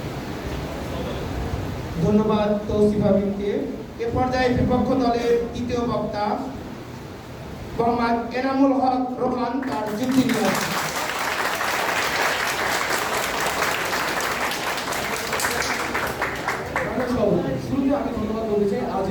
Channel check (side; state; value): both; identical; correlation 1.00